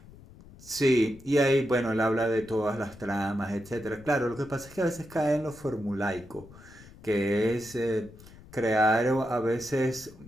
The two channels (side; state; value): left; noise; rumble, 21 dB below the sound